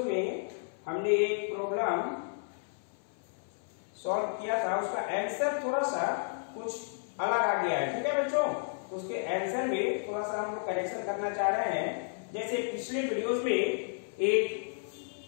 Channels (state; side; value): silent; right; 56 dB below the other